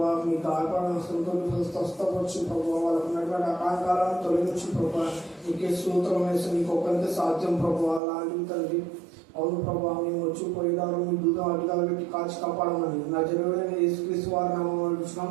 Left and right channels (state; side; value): drops out; left; at 8.0 s